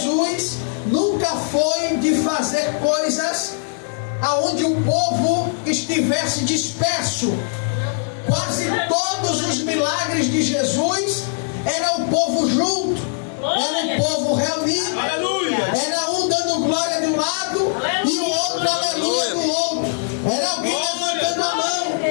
nunca foi de fazer coisas aonde o povo estivesse disperso. Quase todos os milagres de Jesus era o povo junto, era o povo reunido. Era um dando glória de um lado e o outro aleluia do outro. Era alguém levantando a mão,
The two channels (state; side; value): silent; right; digital silence